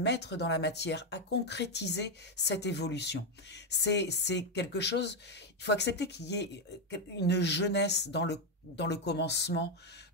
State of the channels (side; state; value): both; normal; correlation 0.05